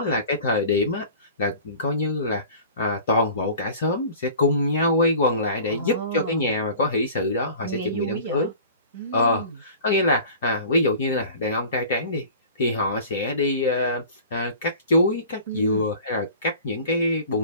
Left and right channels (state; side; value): inverted; both; correlation -0.42